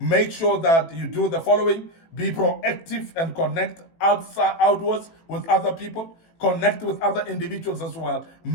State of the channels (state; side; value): late; right; 18 ms